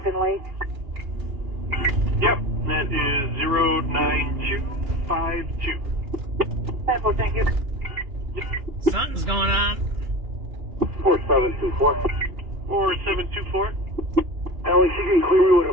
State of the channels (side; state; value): left; late; 2.9 ms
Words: Lake? Yep, that is 09252. Thank you. Something's going on. 4724. 4724. Alex, you can clear me with a